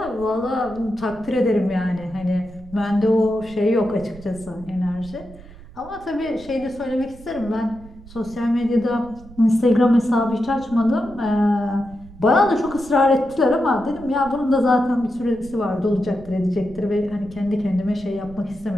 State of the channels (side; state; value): right; noise; rumble, 19 dB below the sound